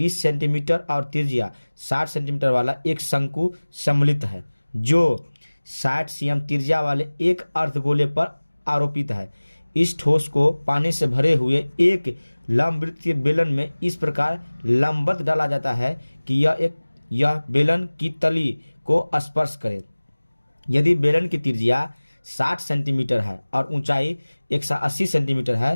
सेंटीमीटर और त्रिज्या 60 सेंटीमीटर वाला एक शंकु सम्मिलित है, जो 60 सीएम त्रिज्या वाले एक अर्धगोले पर आरोपित है। इस ठोस को पानी से भरे हुए एक लंबवृत्तीय बेलन में इस प्रकार लंबवत डाला जाता है कि यह बेलन की तली को स्पर्श करे। यदि बेलन की त्रिज्या 60 सेंटीमीटर है और ऊंचाई 180 सेंटीमीटर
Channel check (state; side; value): inverted; both; correlation -1.00